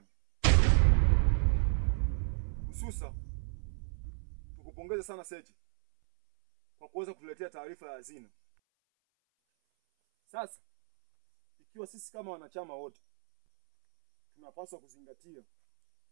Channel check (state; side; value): silent; left; 56 dB below the other